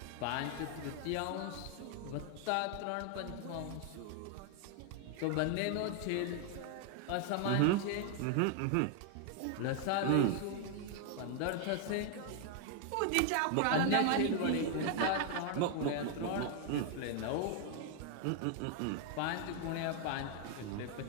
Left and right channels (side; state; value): both; different; correlation 0.00